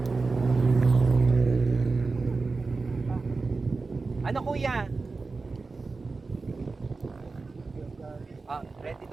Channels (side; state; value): left; quieter; 4.0 dB